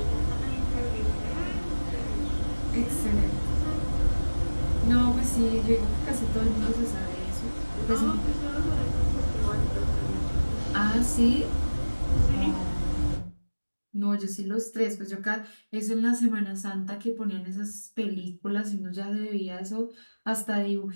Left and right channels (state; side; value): inverted; both; correlation -1.00